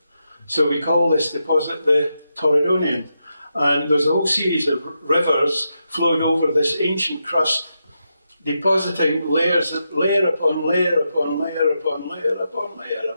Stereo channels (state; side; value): inverted; both; correlation -0.85